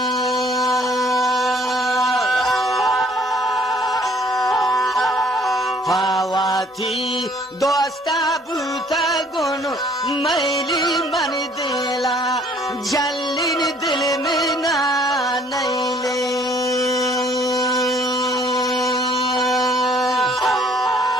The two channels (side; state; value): both; normal; correlation 0.59